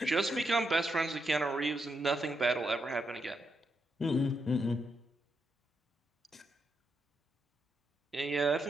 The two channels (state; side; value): normal; both; correlation 0.82